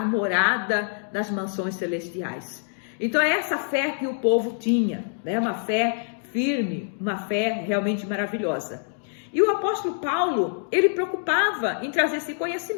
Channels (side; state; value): right; silent; digital silence